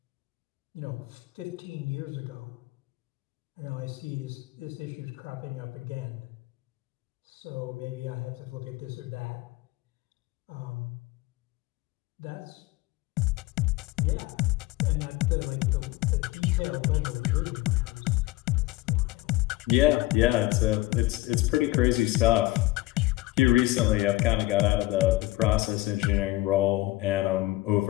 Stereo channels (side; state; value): right; quieter; 18.4 dB